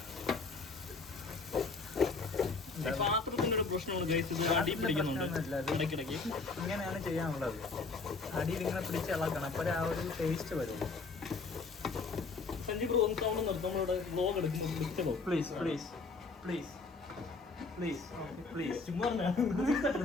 പാത്രത്തിന്റെ ഒരു പ്രശ്നമാണ് ഗൈസ്. ഇത് അടി പിടിക്കുന്നുണ്ട് ഇടയ്ക്കിടയ്ക്ക്. ഇങ്ങനെയാണ് ചെയ്യാനുള്ളത്. അടിയിൽ ഇങ്ങനെ പിടിച്ച് ഇളക്കണം. അപ്പോഴേ ആ ഒരു ടേസ്റ്റ് വരുള്ളൂ. സഞ്ജയ് ബ്രോ ഒന്ന് സൗണ്ട് നിർത്തും. നമ്മളിവിടെ വ്ലോഗ് എടുക്കുന്നു. പ്ലീസ് ചുമ്മാ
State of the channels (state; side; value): quieter; right; 4.1 dB